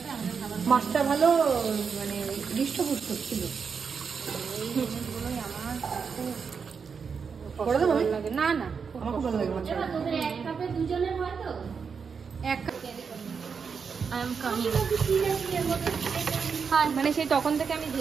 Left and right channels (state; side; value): quieter; left; 5.9 dB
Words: মাছটা ভালো, মানে হৃষ্টপুষ্ট ছিল। এই জিনিসগুলোই আমার খুব ভালো লাগে। না না, আমার খুব ভালো লাগে মাছটা। এক কাপে দুজনের হয় তো, এক কাপ। I am coming. হ্যাঁ, মানে সেই তখন থেকে আমি